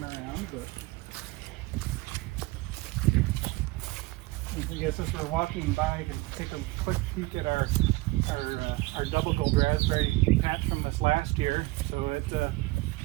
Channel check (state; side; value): quieter; left; 21.1 dB